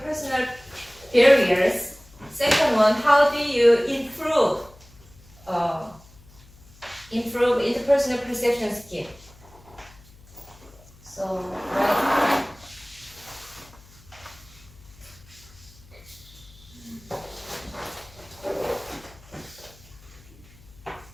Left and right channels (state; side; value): noise; left; hum, 24 dB below the sound